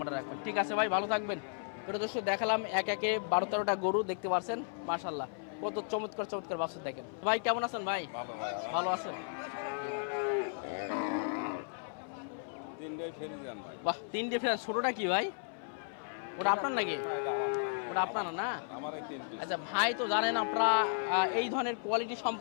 রাখবেন। ঠিক আছে ভাই, ভালো থাকবেন। প্রিয় দর্শক, দেখালাম এক একে 12-13টা গরু দেখতে পাচ্ছেন, মাশাআল্লাহ কত চমৎকার চমৎকার বাছুর দেখেন। ভাই কেমন আছেন ভাই? ভালো ভাই, ভালো আছেন? তিনটাই ফেরি যান। বাহ, 3 ডিফারেন্স। ছোটটা কি ভাই? ওটা আপনার নাকি? ওটা আপনার না? আমার এই 3 পিস। আচ্ছা ভাই, তো জানেন আপনারা এই ধরনের কোয়ালিটি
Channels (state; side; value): silent; right; 55 dB below the other